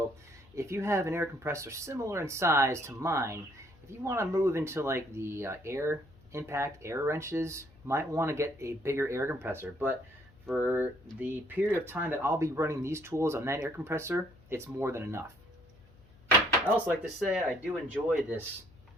if you have an air compressor similar in size to mine, if you want to move into like the air wrenches, might want to get a bigger air compressor, but for the period of time that I'll be running these tools on that air compressor, it's more than enough. I also like to say I do enjoy this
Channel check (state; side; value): noise; left; hum, 26 dB below the sound